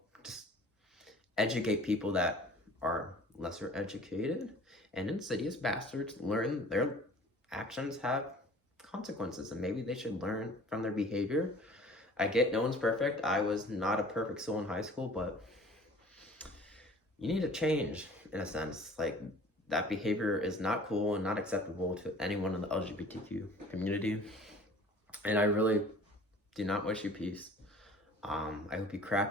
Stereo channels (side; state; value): both; normal; correlation 0.47